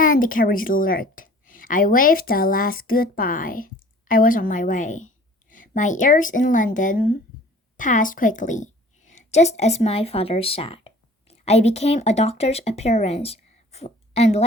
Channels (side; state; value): both; normal; correlation 0.49